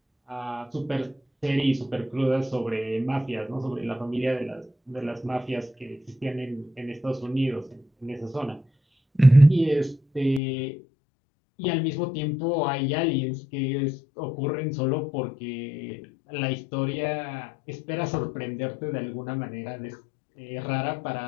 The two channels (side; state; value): right; drops out; at 10.4 s